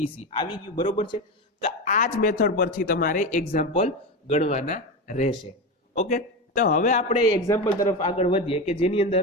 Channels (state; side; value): normal; both; correlation 0.19